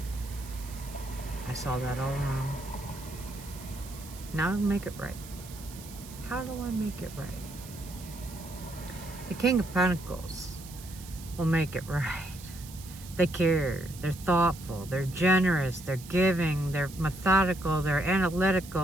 I saw that all wrong. Now I make it right. How do I make it right? The King of Pentacles will make it right. They care, they're thoughtful, they're generous, they're giving, they're methodical, they're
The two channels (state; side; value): noise; right; hiss, 17 dB below the sound